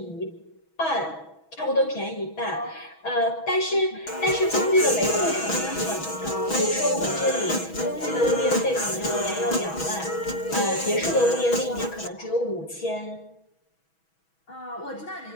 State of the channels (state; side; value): late; right; 6.2 ms